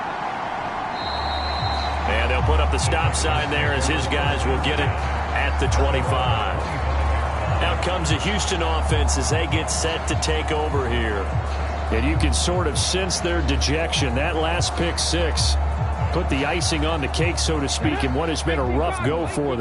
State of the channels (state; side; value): identical; both; correlation 1.00